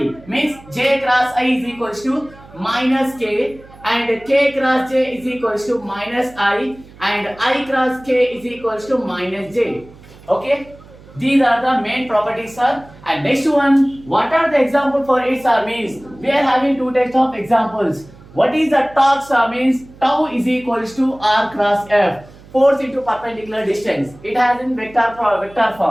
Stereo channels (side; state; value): right; noise; hum, 22 dB below the sound